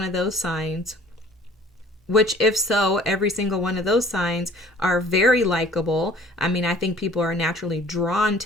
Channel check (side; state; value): both; normal; correlation 0.52